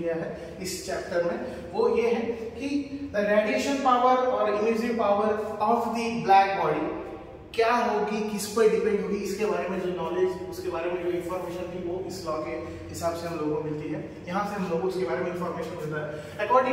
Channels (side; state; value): both; identical; correlation 1.00